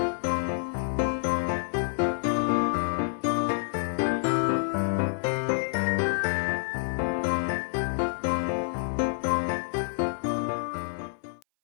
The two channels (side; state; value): right; silent; 57 dB below the other